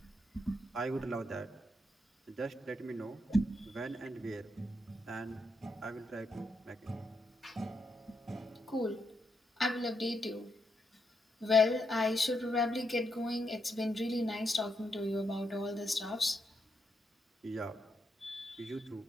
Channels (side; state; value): both; normal; correlation 0.81